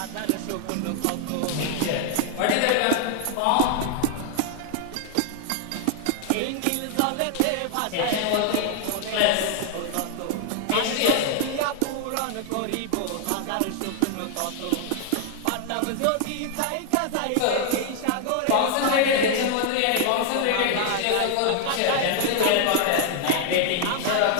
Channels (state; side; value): different; both; correlation 0.00